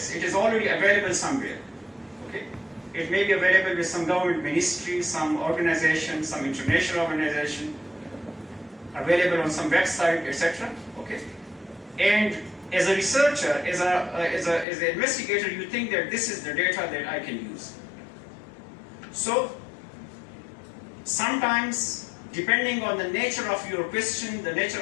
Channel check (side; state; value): right; drops out; at 14.7 s